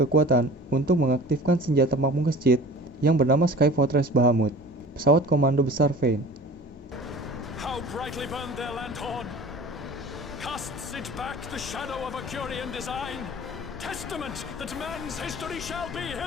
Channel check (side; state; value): both; normal; correlation 0.41